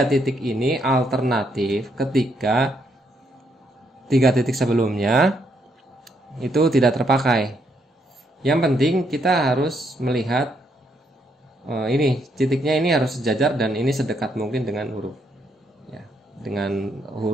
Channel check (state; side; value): normal; both; correlation 0.75